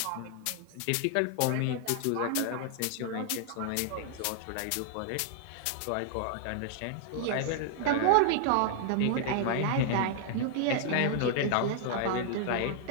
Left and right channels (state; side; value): different; both; correlation 0.00